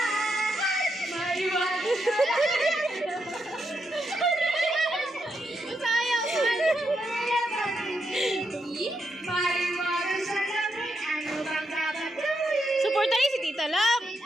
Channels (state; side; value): normal; both; correlation 0.82